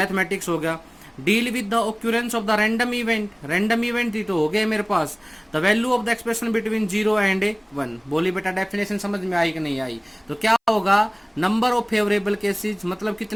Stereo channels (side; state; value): both; identical; correlation 1.00